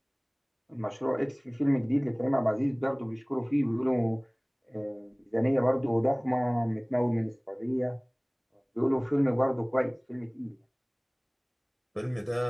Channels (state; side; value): identical; both; correlation 1.00